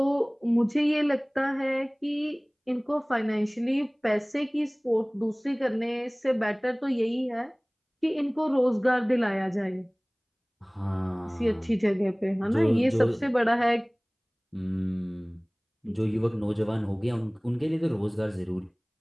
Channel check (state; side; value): identical; both; correlation 1.00